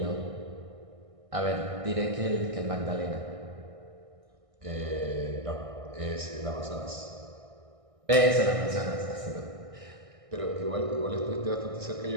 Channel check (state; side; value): late; left; 1.6 ms